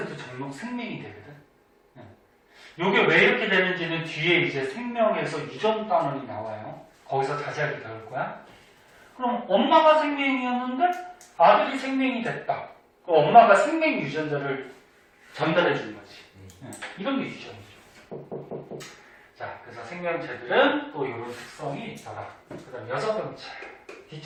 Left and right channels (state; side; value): identical; both; correlation 1.00